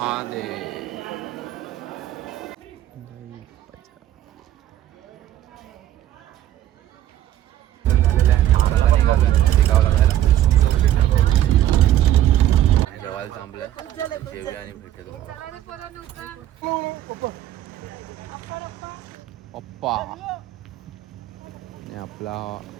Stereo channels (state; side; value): quieter; left; 12.6 dB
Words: दे. जेवायला थांबलं. जेवूया आणि भेटू तुम्हाला. पप्पा आणि आपला